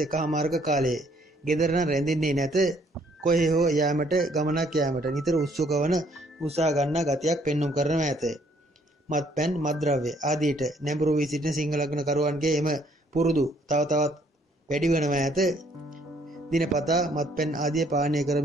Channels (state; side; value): normal; both; correlation 0.65